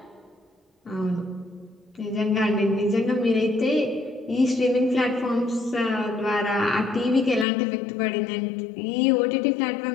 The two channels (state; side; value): drops out; right; at 7.5 s